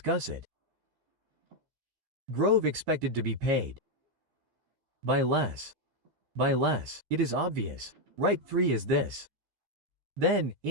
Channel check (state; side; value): late; left; 13 ms